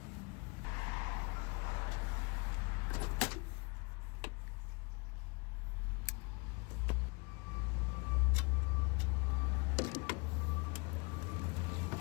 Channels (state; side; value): quieter; right; 29.3 dB